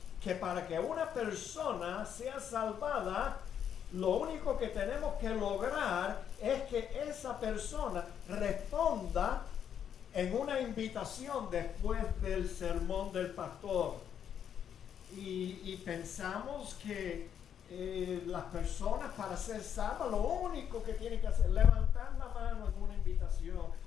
que para que una persona sea salvada, lo único que tenemos que lograr es que esa persona responda en una invitación después del sermón del pastor. Y pensamos que las personas, para ser salvas, lo único que tienen que hacer es levantar la mano en una invitación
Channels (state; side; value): quieter; right; 8.7 dB